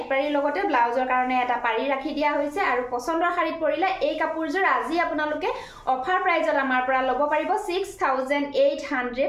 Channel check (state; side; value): identical; both; correlation 1.00